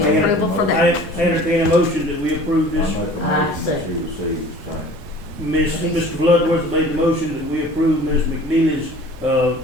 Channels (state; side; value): normal; both; correlation 0.46